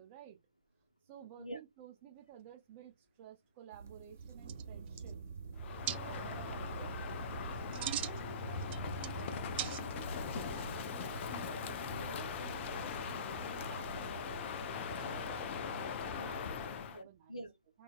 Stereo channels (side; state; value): both; inverted; correlation -0.36